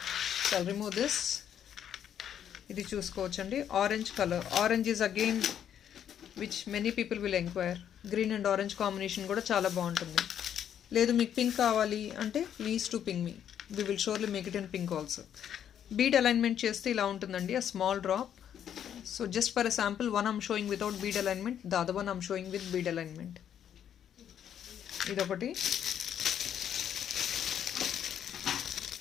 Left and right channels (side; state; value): right; quieter; 9.5 dB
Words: So I'll remove this. ఇది చూసుకోవచ్చండి, orange colour. Orange is again which many people will enquire. Green and orange combination కూడా చాలా బాగుంటుంది. లేదు మీకు పింక్ కావాలి అంటే please to ping me, we will surely make it in pink also. Bead alignment చేస్తే ఇలా ఉంటుందండి, a small drop. So just for a sample, one I'm showing without bead alignment, the other one I'm showing with bead alignment. Idokati.